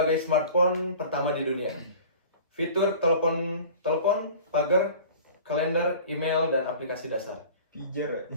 smartphone pertama di dunia. Fitur telepon, pagar, kalender, email, dan aplikasi dasar. Pijar.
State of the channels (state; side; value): inverted; both; correlation -0.42